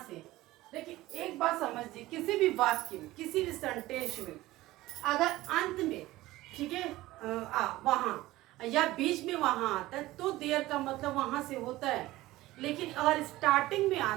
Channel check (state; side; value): quieter; left; 17.5 dB